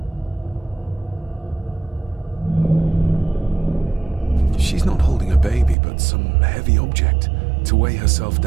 She's not holding a baby, but some heavy object to weigh herself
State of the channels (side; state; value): left; drops out; at 5.8 s